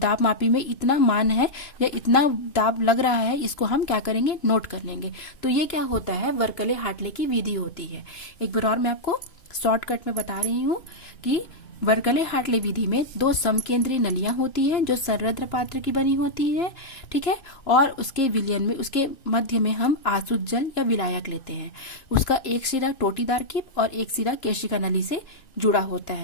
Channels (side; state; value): right; late; 2.9 ms